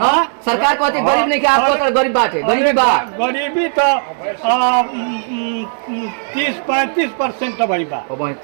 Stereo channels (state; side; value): silent; left; 68 dB below the other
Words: सरकार कहती गरीब नहीं, क्या आपको गरीब बाटे? गरीबी बात गरीबी तो 30-35% भाई बा।